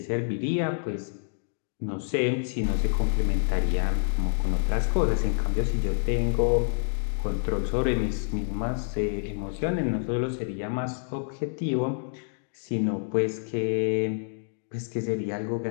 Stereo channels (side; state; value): right; silent; digital silence